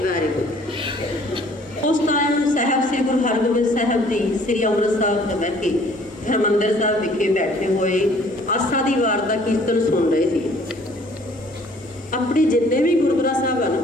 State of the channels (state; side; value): normal; both; correlation 0.56